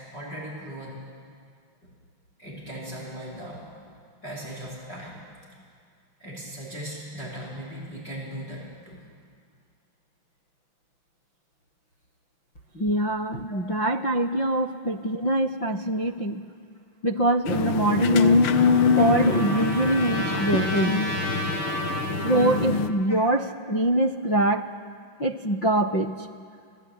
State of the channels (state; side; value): late; right; 5.9 ms